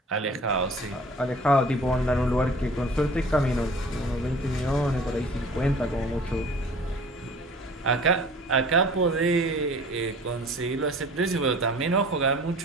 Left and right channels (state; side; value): normal; both; correlation 0.46